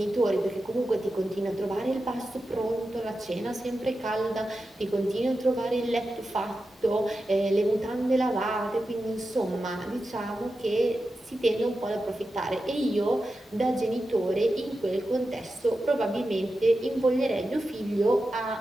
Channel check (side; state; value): both; normal; correlation 0.91